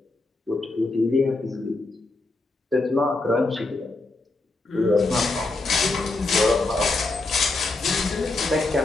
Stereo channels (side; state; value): right; quieter; 3.2 dB